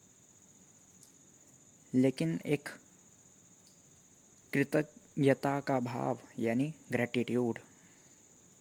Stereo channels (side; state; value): both; identical; correlation 1.00